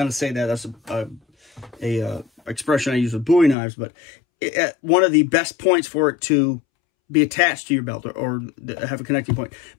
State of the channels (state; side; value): drops out; right; at 3.6 s